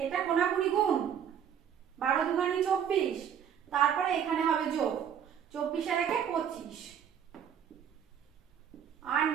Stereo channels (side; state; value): left; quieter; 8.7 dB